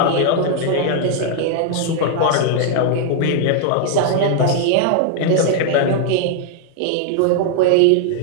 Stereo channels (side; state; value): both; different; correlation 0.00